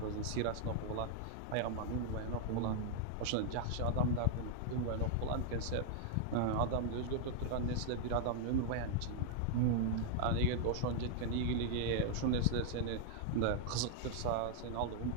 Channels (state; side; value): different; both; correlation -0.01